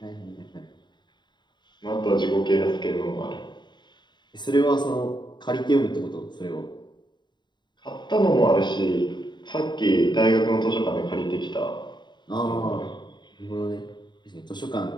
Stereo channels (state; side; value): late; right; 0.22 ms